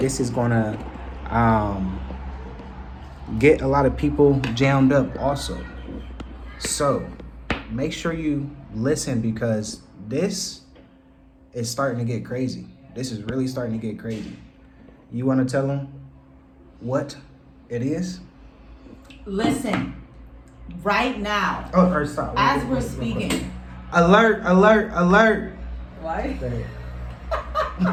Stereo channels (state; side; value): identical; both; correlation 1.00